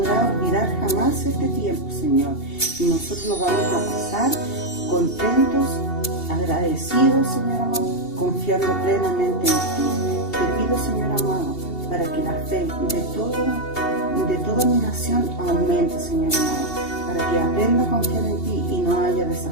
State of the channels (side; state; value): right; late; 2.7 ms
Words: olvidar jamás este tiempo, Señor, y nosotros lo vamos a pasar contentos, agradecidos, Señor amado, confiando plenamente en ti. Te pido, Señor amado, para que la fe de toda mi nación aumente, Señor amado, para que aprenda a confiar en ti y no haya